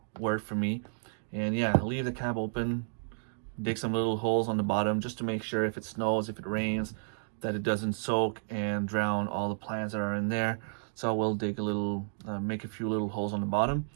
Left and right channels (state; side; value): silent; left; digital silence